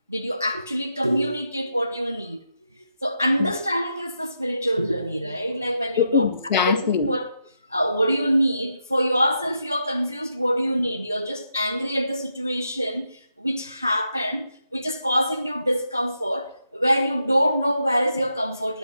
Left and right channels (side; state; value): both; inverted; correlation -0.83